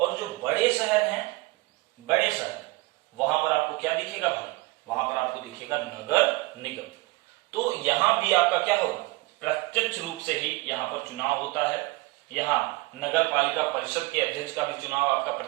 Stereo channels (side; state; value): left; quieter; 22.4 dB